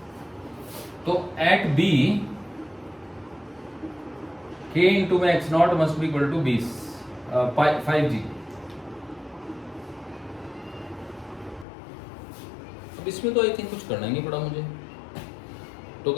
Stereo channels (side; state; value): right; drops out; at 11.7 s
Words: तो एट B K इंटू में x0 must be equal to 5G। अब इसमें तो आई थिंक कुछ करना ही नहीं पड़ा मुझे। तो